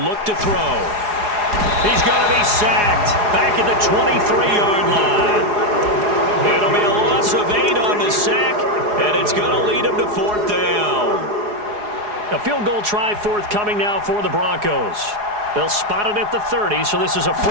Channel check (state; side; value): late; left; 4.8 ms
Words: to throw. He's going to be sacked back at the 23-yard line. It'll be a loss of 8 on the sack, and it's going to lead him to 4th down. A field goal try forthcoming now for the Broncos. They'll spot it at the 30, so this is a